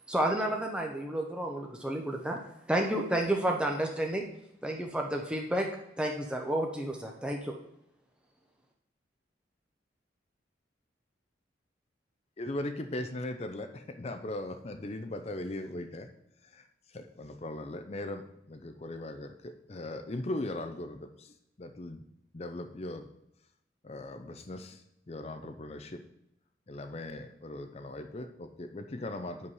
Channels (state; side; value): normal; both; correlation 0.64